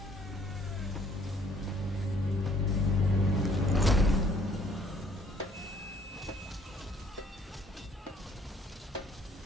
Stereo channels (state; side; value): normal; both; correlation 0.61